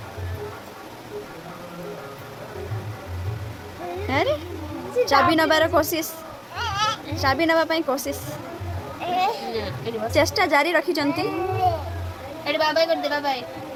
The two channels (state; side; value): identical; both; correlation 1.00